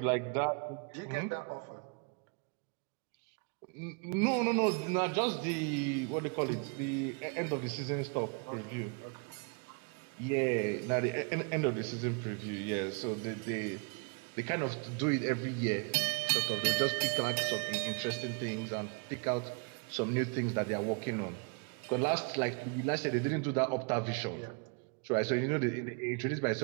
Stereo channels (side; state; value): left; quieter; 33.9 dB